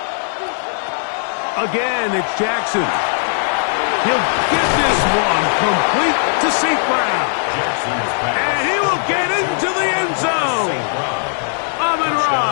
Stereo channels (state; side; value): silent; right; digital silence